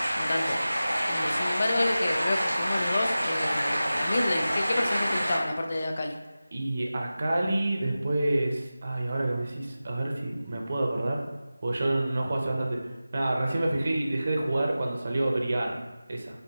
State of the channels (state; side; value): inverted; both; correlation -0.95